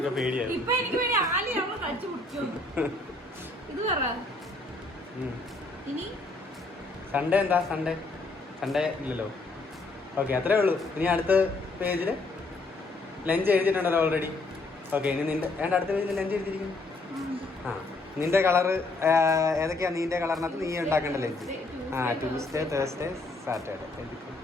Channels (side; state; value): right; quieter; 3.1 dB